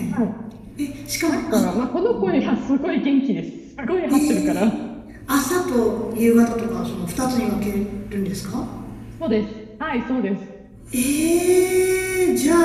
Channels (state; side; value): identical; both; correlation 1.00